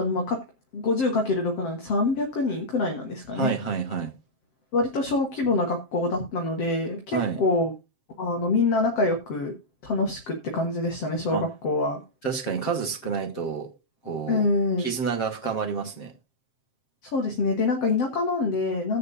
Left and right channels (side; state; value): right; late; 7.5 ms